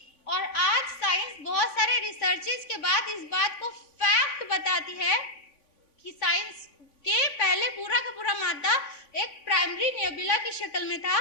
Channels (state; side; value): late; right; 3.5 ms